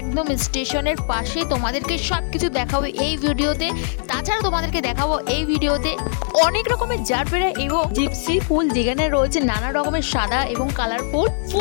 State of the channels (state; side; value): silent; right; digital silence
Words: স্টেশনের পাশে। তোমাদেরকে সবকিছু দেখাবো এই ভিডিওতে। তাছাড়া তোমাদেরকে দেখাবো এই ভিডিওতে অনেক রকমের জারবেরা এবং জিপসি ফুল, যেখানে রয়েছে নানা রকমের সাদা এবং কালারফুল